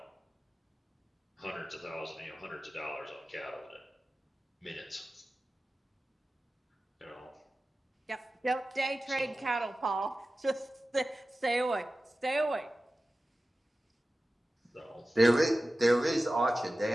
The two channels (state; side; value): normal; both; correlation 0.95